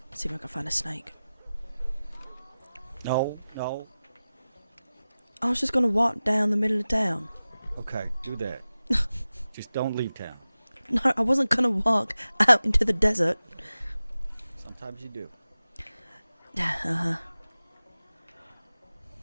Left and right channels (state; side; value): inverted; both; correlation -0.96